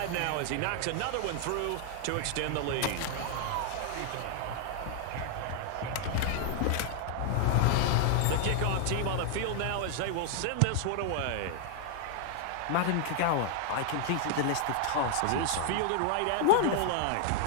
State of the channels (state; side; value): different; both; correlation 0.00